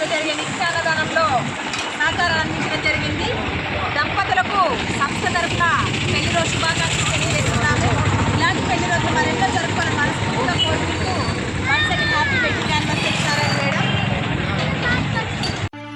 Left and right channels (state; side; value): identical; both; correlation 1.00